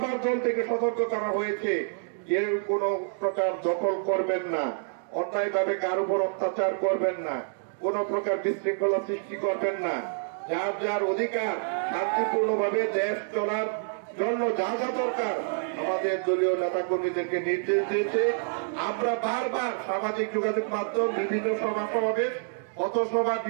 দল থেকে সতর্ক করা হয়েছে, কেউ কোন প্রকার দখল করবেন না, অন্যায় ভাবে কার উপর অত্যাচার করবেন না, কোন প্রকার বিশৃঙ্খলা সৃষ্টি করবেন না। যার যার অধিকার শান্তিপূর্ণভাবে দেশ চলার জন্য যা যা দরকার আমাদের দলীয় নেতা কর্মীদেরকে নির্দেশ দিয়েছে। আমরা বারবার সামাজিক যোগাযোগ মাধ্যম, বিভিন্ন সভা সমাবেশ, পথসভা,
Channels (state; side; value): silent; left; digital silence